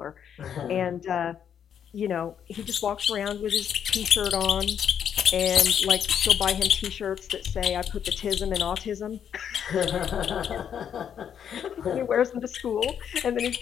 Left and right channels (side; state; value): right; quieter; 8.5 dB